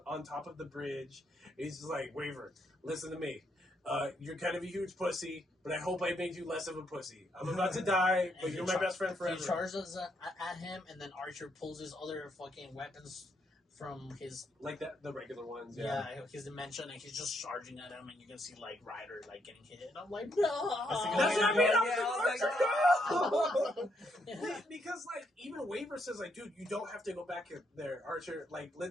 top of the bridge. He's just like, Waver, listen to me. You're kind of a huge pussy, but I hope I made you less of a pussy. I'm about to die, but you're my best friend forever. He charges at him, and then Archer pulls his other fucking weapons from his like the regular ones. his dimension, and he's just charging at him, and you can see like Ryder like getting hit, and I'm like, no. That's what I mean. I was like, Because like even Waver says like, dude, you don't have to go back there, Archer. Like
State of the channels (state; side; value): normal; both; correlation 0.76